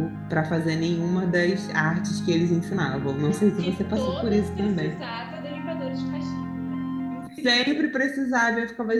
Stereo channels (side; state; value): both; identical; correlation 1.00